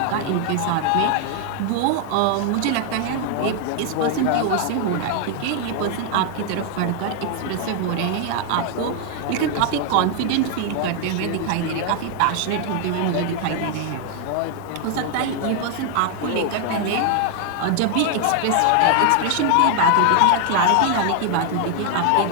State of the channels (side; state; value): both; different; correlation 0.00